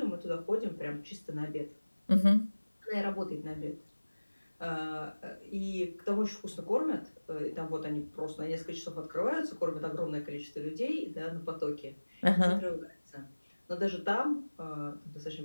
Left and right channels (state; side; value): inverted; both; correlation -1.00